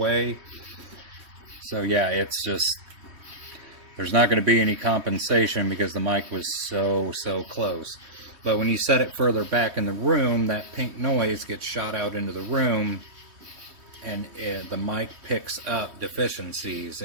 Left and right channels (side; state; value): left; late; 3.2 ms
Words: So yeah, it's just, there's not going to be any compensation because the mic was so close. But when you set it further back in the room, that pink noise gets shot out into the room, and the mic picks up deficiencies